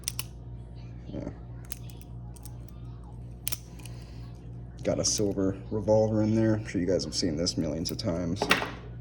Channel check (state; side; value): identical; both; correlation 1.00